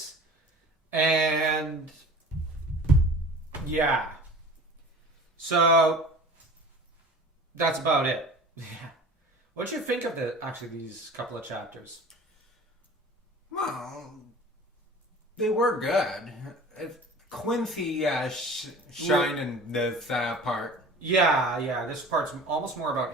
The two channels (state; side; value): normal; both; correlation 0.42